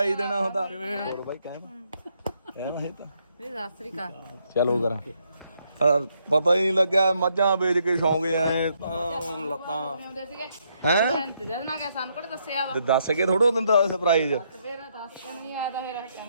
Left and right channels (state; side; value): inverted; both; correlation -0.75